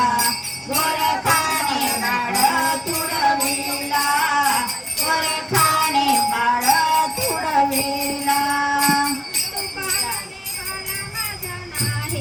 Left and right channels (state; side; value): identical; both; correlation 1.00